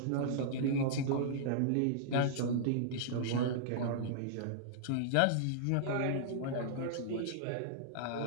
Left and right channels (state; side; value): different; both; correlation -0.01